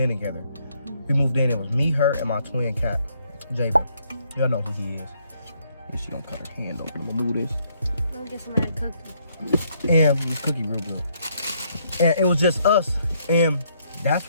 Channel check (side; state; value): both; inverted; correlation -0.71